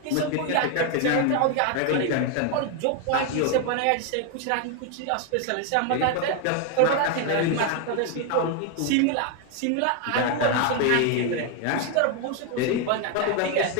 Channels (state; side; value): different; both; correlation 0.01